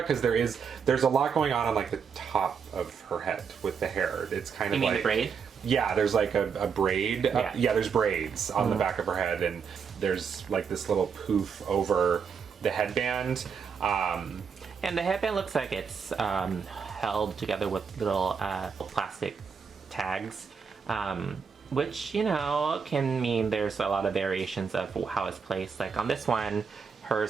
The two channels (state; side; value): quieter; left; 6.2 dB